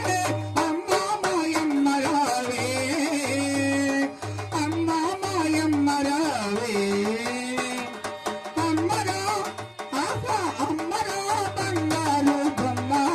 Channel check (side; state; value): both; identical; correlation 1.00